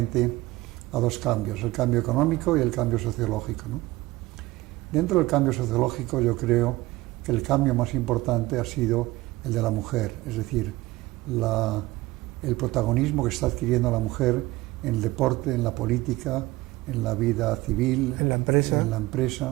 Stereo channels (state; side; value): quieter; left; 18.8 dB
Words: a dos cambios, el cambio económico y el cambio sociológico, ¿no? Dentro del cambio sociológico yo creo que el cambio más importante ha sido el de la mujer, es decir, el protagonismo que está adquiriendo la mujer en el deporte, en la política, en la vida civil, en la empresa,